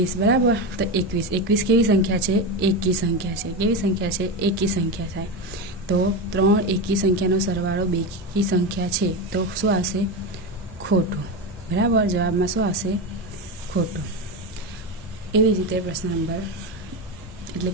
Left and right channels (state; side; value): normal; both; correlation 0.17